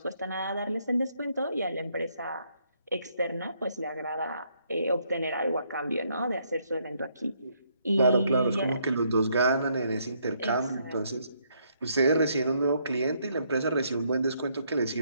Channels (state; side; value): inverted; both; correlation -0.72